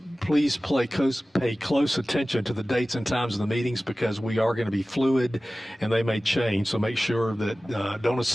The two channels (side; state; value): both; normal; correlation 0.97